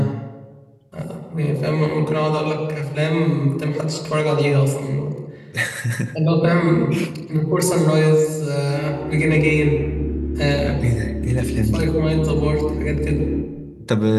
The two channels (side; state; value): both; identical; correlation 1.00